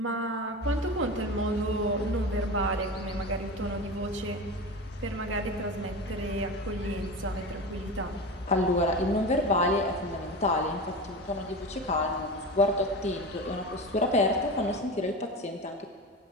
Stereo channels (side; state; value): both; normal; correlation 0.27